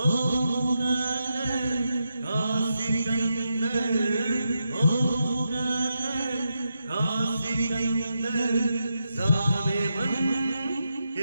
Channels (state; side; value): inverted; both; correlation -0.86